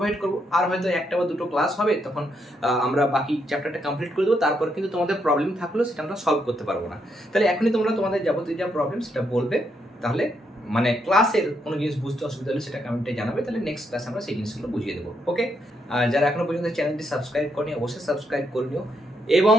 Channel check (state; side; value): normal; both; correlation 0.77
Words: করবো, আর হয়তো একটা বা দুটো ক্লাস হবে, তখন আমরা বাকি চ্যাপ্টারটা কমপ্লিট করে দেবো, তারপর কিন্তু তোমাদের প্রবলেম থাকলেও সেটা আমরা সলভ করতে পারবো না। তাহলে এখনই তোমরা তোমাদের যাবতীয় যা প্রবলেম সেটা বলবে, তাহলে মানে ক্লাসের কোনো জিনিস বুঝতে অসুবিধা হলে সেটা কমেন্টে জানাবে, তাহলে নেক্সট ক্লাসে আমরা সেই জিনিসগুলো বুঝিয়ে দেবো। ওকে, যারা এখনো পর্যন্ত চ্যানেলটি সাবস্ক্রাইব করনি অবশ্যই সাবস্ক্রাইব করে নিও, এবং